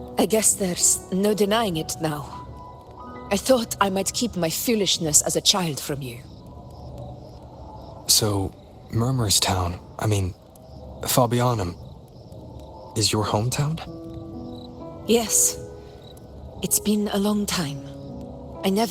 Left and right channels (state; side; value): identical; both; correlation 1.00